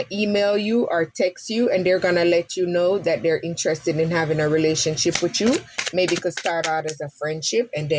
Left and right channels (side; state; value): both; identical; correlation 1.00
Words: email you or text you, and they're going to let you know that they're interested in having a relationship with you. Maybe it could start out as a friendship and